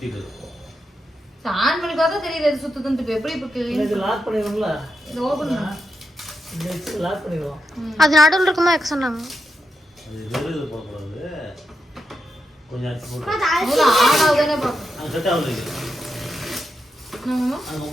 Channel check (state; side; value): normal; both; correlation 0.86